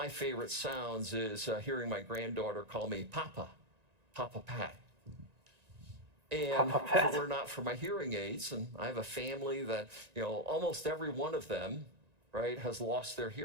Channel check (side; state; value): left; late; 1.9 ms